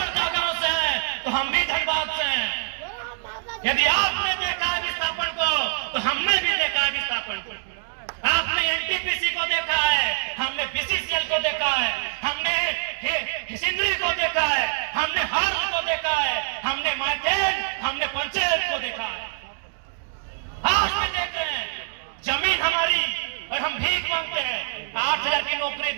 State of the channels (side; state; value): left; silent; 62 dB below the other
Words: गांव से हैं तो हम भी धनबाद से हैं। यदि आपने देखा विस्थापन को तो हमने भी देखा विस्थापन को। आपने एनटीपीसी को देखा है, हमने बीसीसीएल को देखा है, हमने सिंदरी को देखा है, हमने हार्ल को देखा है, हमने मार्टेन, हमने पंचायत को देखा है। आज भी देख रहे हैं जमीन हमारी और हम भीख मांगते हैं। 8000 की नौकरी